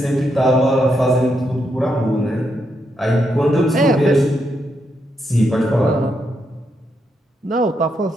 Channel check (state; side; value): normal; both; correlation 0.81